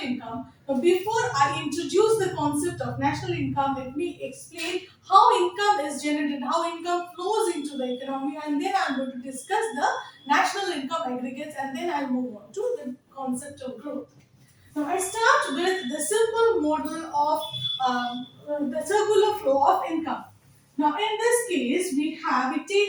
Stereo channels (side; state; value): both; identical; correlation 1.00